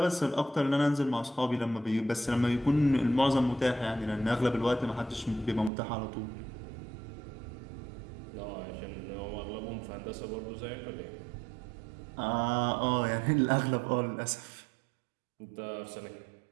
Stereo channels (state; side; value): drops out; left; at 5.7 s